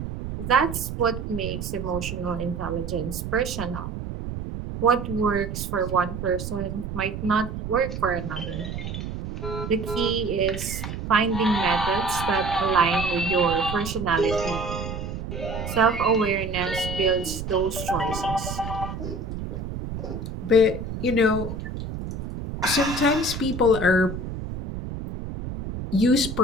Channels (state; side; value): noise; right; rumble, 7 dB below the sound